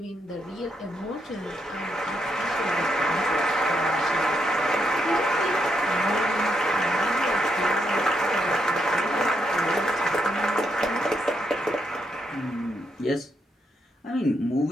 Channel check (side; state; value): both; normal; correlation 0.79